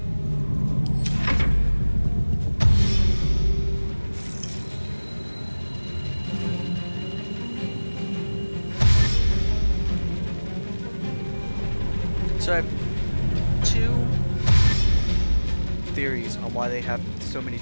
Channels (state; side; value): inverted; both; correlation -1.00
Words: So I have two theories on why they have so many